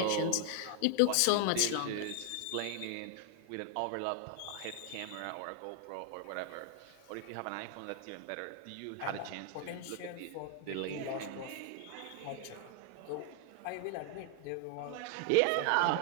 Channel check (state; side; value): different; both; correlation 0.00